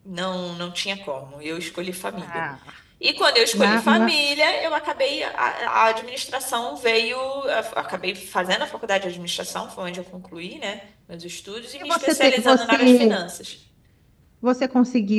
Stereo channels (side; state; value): both; identical; correlation 1.00